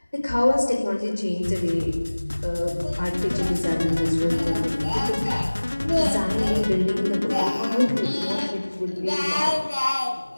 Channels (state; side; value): inverted; both; correlation -1.00